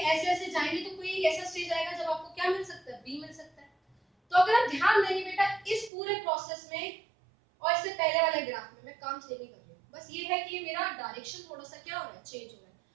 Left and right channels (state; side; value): drops out; left; at 5.9 s